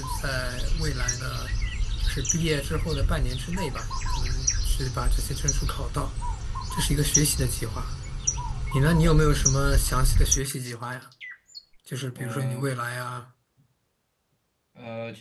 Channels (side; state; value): both; identical; correlation 1.00